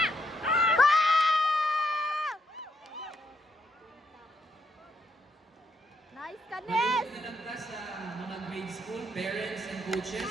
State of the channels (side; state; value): both; normal; correlation 0.76